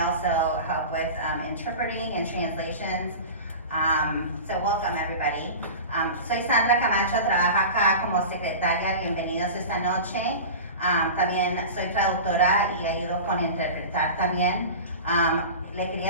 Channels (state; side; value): inverted; both; correlation -0.32